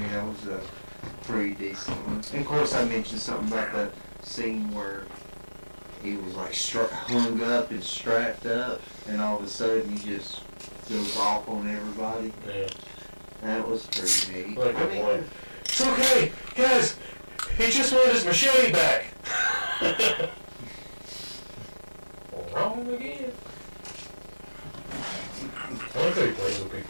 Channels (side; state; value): both; inverted; correlation -1.00